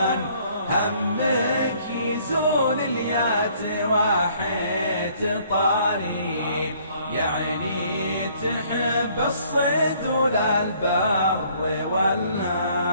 همك يزول اليات واحد طاري يعني تحب الصيد ولا البر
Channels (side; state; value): both; inverted; correlation -0.61